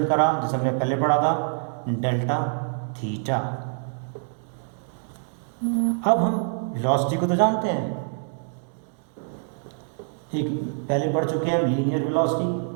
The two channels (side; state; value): left; silent; digital silence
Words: करा जैसे हमने पहले पढ़ा था, डेल्टा थीटा। अब हम वेलोसिटी को तो जानते हैं, एक पहले पढ़ चुके हैं लीनियर वेलोसिटी,